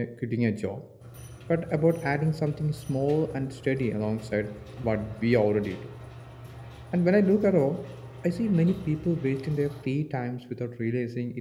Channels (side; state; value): both; identical; correlation 1.00